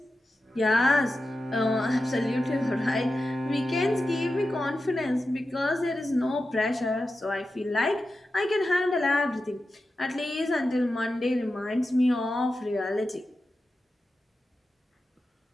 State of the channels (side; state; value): both; normal; correlation 0.91